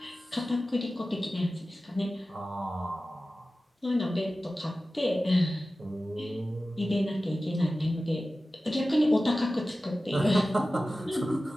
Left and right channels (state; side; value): normal; both; correlation 0.95